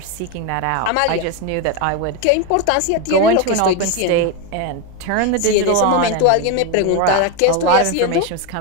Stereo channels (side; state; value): both; different; correlation 0.02